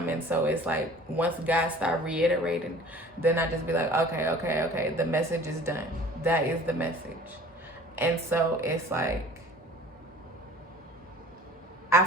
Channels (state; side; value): normal; both; correlation 0.47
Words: in. So it's like once God start reiterating, then I just be like, okay, the message is done. That is the message. And so it's like, I